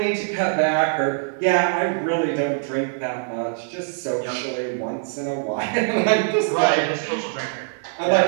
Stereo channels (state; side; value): silent; left; 64 dB below the other